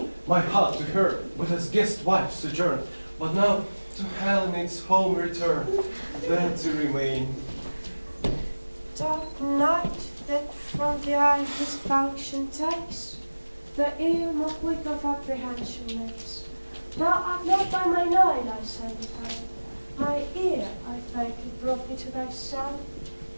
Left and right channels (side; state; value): both; inverted; correlation -1.00